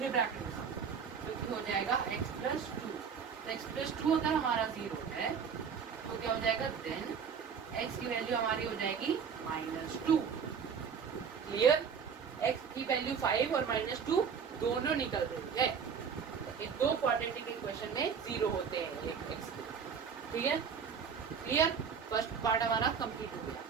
ब्रैकेट में, तो हो जाएगा x प्लस 2। तो x प्लस 2 अगर हमारा 0 है तो क्या हो जाएगा, देन x की वैल्यू हमारी हो जाएगी -2। क्लियर, x की वैल्यू 5 और -2 दोनों निकल रही है। ये दो क्वाड्रेटिक इक्वेशन में 0 होते हैं x के। ठीक है, क्लियर, फर्स्ट पार्ट हमारा कंप्लीट हो गया।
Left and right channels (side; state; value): left; quieter; 6.7 dB